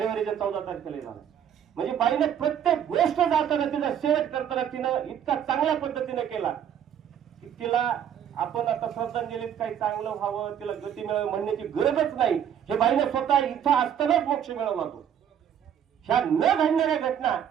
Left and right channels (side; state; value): left; quieter; 9.3 dB